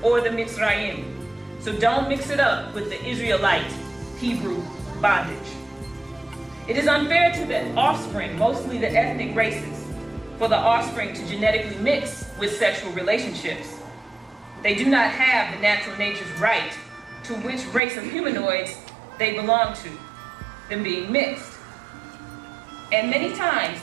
or the Mitzrayim. So don't mix it up with the Israelite Hebrew bondage. It is unfair to the offspring, mostly the ethnic races, for the offspring to genetically mix with sexual relationships. They do not have the natural nature's right to which race of humanoids they belong to, them being mixed. And many times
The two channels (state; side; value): drops out; left; at 17.8 s